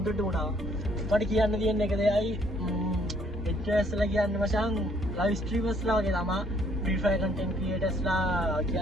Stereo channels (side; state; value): both; normal; correlation 0.64